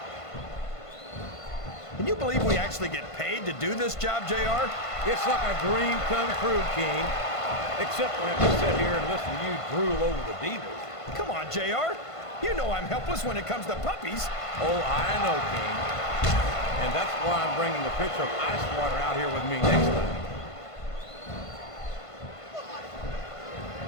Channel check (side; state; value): right; late; 1.5 ms